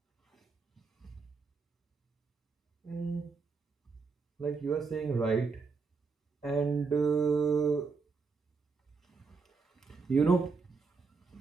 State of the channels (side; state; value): left; quieter; 4.8 dB